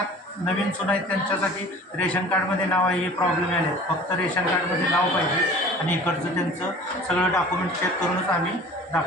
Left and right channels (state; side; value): normal; both; correlation 0.44